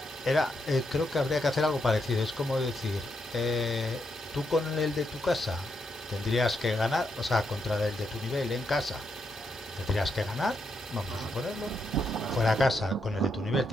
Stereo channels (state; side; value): normal; both; correlation 0.81